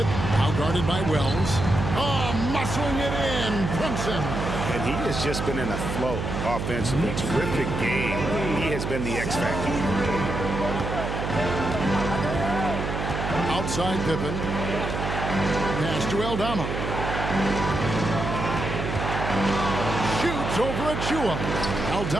Now guarded by Wells. Oh, muscling it in. Brunson. And he has just been in a flow offensively. Terrific game. He has been the X factor. Outside Pippen. Pass to Aldama. Shoots over Achiuwa.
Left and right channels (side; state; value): right; noise; hum, 3 dB below the sound